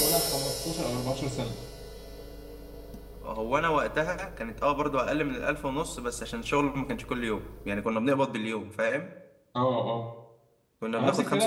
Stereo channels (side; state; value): both; identical; correlation 1.00